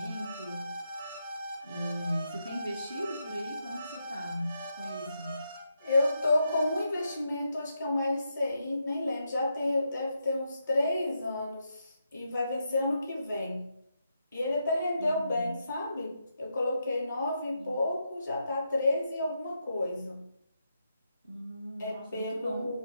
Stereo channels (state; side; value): inverted; both; correlation -0.83